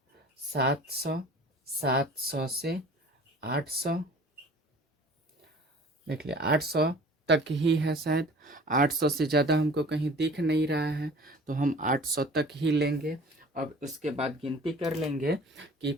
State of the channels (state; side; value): normal; both; correlation 0.46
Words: 700, 700 से 800। देख लिया, 800 तक ही है शायद। 800 से ज़्यादा हमको कहीं दिख नहीं रहा है, तो हम 800 तक ही लेंगे। अब उसके बाद गिनती कर लेंगे कि